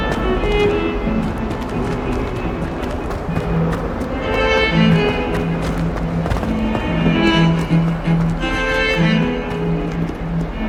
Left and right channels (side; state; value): both; identical; correlation 1.00